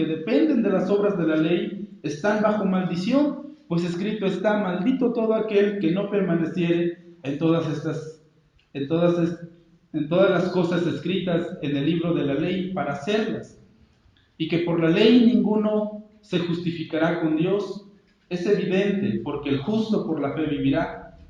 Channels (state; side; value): identical; both; correlation 1.00